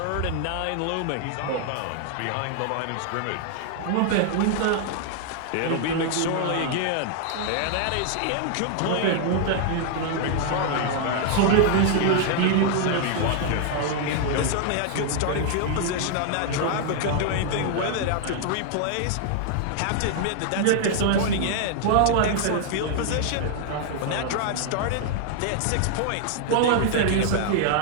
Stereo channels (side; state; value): both; different; correlation 0.00